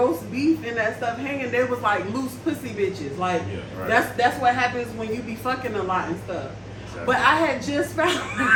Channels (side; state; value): both; identical; correlation 1.00